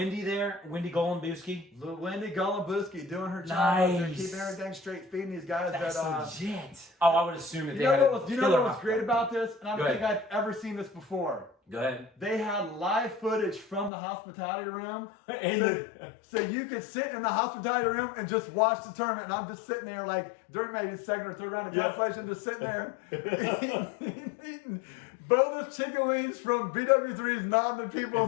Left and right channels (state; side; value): drops out; right; at 13.9 s